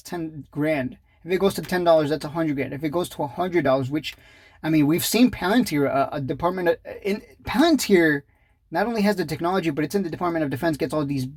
10 grand. If it goes to $10, that's 100 grand. If it goes to $100, which, I mean, we've seen Palantir, Palantir not only has the technology, but it's in the Department of Defense, gets all these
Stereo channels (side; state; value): both; identical; correlation 1.00